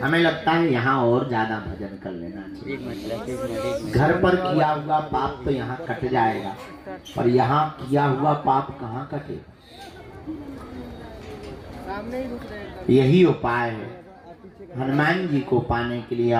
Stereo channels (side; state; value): both; identical; correlation 1.00